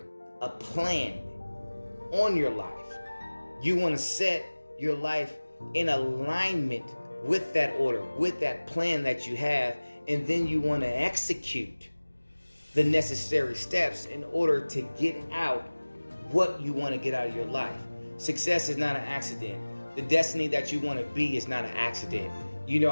a plan on your life. You want to set your life in alignment with that order, with that plan that you have, and then you want to execute the necessary steps in order to get out what you want to get out of your life. Success is not an accident. The destiny that you want to be is not an accident. You know,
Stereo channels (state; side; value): inverted; both; correlation -1.00